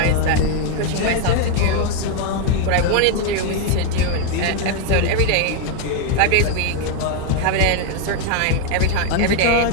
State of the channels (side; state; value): both; different; correlation 0.00